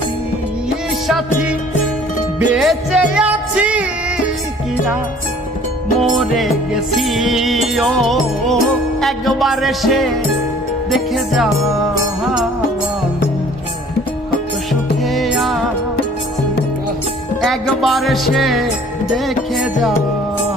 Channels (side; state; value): both; normal; correlation 0.53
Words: সাথী, বেঁচে আছি কি না মরে গেছি। ও একবার এসে দেখে যা কত সুখে আছি, একবার এসে দেখে যা